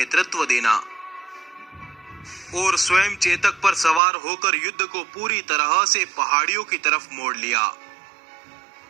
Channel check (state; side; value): drops out; left; at 4.0 s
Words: देना और स्वयं चेतक पर सवार होकर युद्ध को पूरी तरह से पहाड़ियों की तरफ मोड़ लिया,